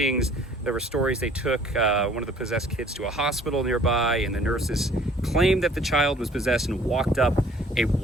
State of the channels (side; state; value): both; normal; correlation 0.55